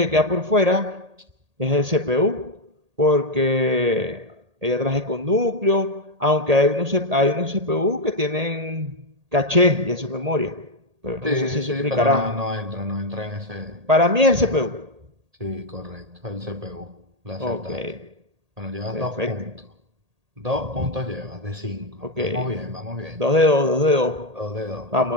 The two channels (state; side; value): late; left; 1.8 ms